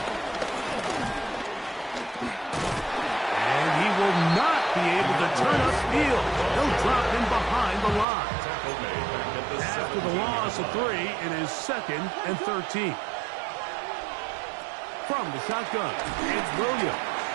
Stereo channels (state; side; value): drops out; left; at 8.1 s